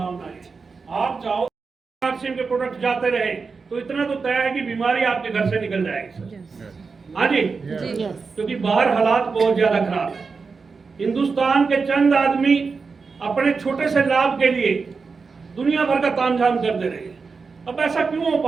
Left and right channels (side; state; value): left; quieter; 4.8 dB